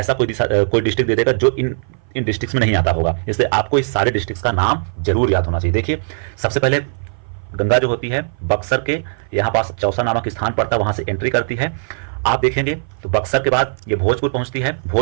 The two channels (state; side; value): silent; left; 57 dB below the other